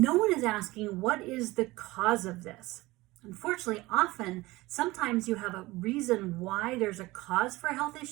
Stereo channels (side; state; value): left; quieter; 20.1 dB